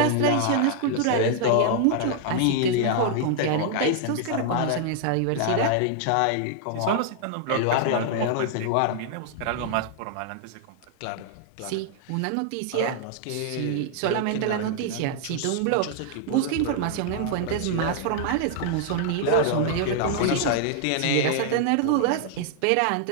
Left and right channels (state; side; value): different; both; correlation 0.00